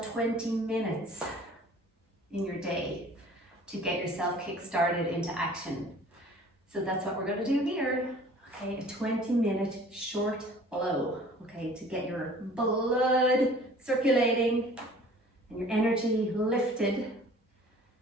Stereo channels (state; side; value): normal; both; correlation 0.49